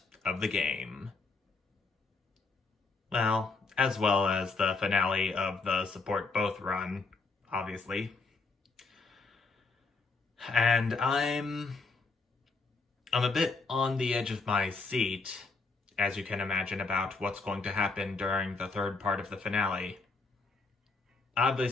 of the game. Well as the finale of the Support Both run, obviously. And I'm a bit on the edge of my seat, as you can imagine, about what's going to happen during the third part of the finale.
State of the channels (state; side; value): quieter; right; 4.0 dB